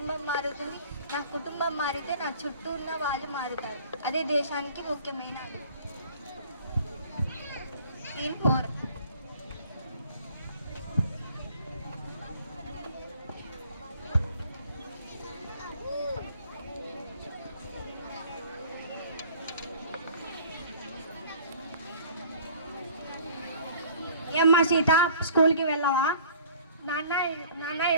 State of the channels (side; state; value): both; inverted; correlation -0.50